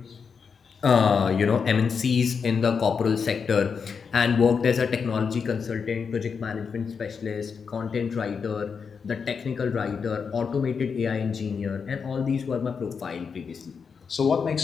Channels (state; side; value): quieter; right; 5.9 dB